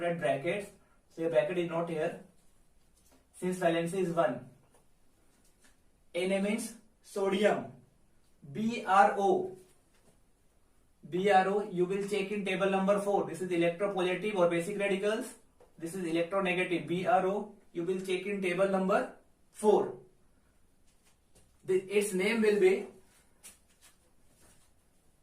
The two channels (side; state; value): both; identical; correlation 1.00